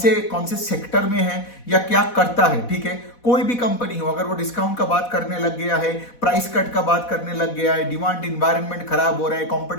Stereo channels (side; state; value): right; late; 4.1 ms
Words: से सेक्टर में है या क्या करता है, ठीक है। कोई भी कंपनी हो, अगर वो डिस्काउंट का बात करने लग गया है, प्राइस कट का बात करने लग गया है, डिमांड इन्वायरमेंट खराब हो रहा है,